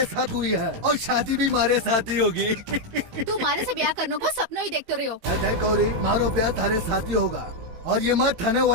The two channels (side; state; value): left; late; 18 ms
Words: साथ हुई है और शादी भी मारे साथ ही होगी। तू मारे से ब्याह करने को सपनों ही देखते रही हो। गौरी, मारो ब्याह थारे साथ ही होगा और ये मत थाने